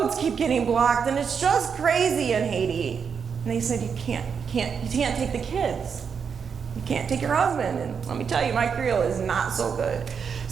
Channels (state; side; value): quieter; left; 6.5 dB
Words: keep getting blocked, and it's just crazy in Haiti. And they said, you can't take the kids. You can't take your husband. And let me tell you, my Creole is not so good.